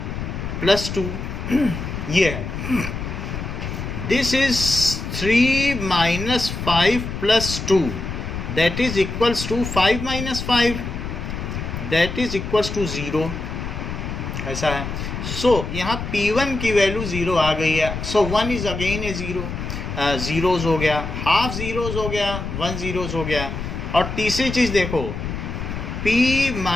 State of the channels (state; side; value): noise; left; rumble, 6 dB below the sound